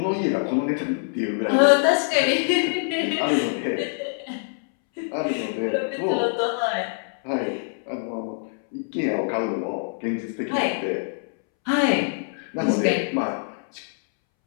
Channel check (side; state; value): right; silent; 62 dB below the other